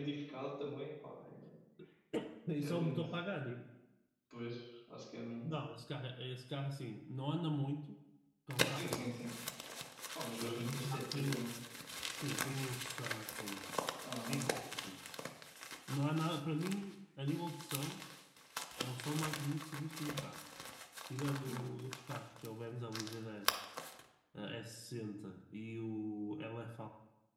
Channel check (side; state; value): both; identical; correlation 1.00